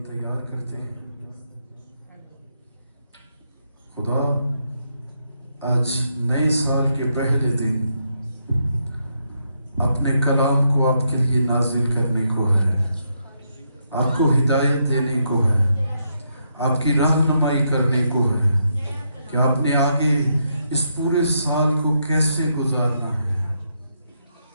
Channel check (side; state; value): both; inverted; correlation -0.79